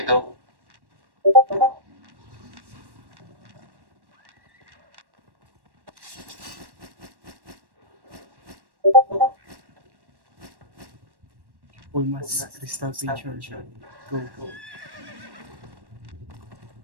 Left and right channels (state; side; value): late; left; 1.1 ms